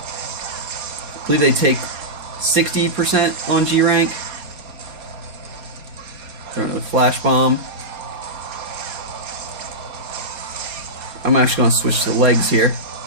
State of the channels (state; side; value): late; left; 4.3 ms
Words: I believe they take 60% on G rank. Throw another flash bomb. I'm actually going to switch to the legs here.